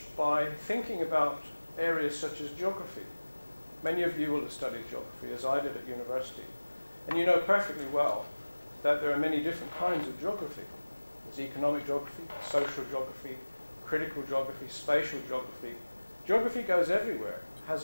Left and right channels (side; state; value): both; inverted; correlation -1.00